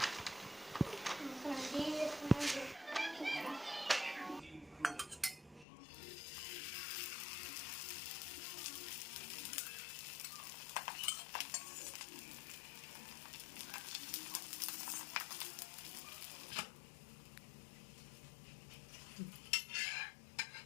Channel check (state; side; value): drops out; right; at 5.7 s